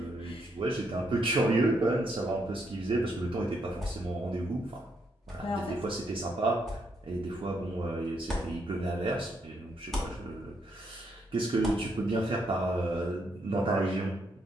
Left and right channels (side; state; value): both; normal; correlation 0.76